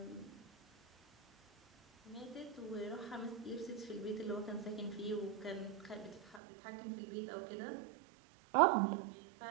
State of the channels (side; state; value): left; drops out; at 6.4 s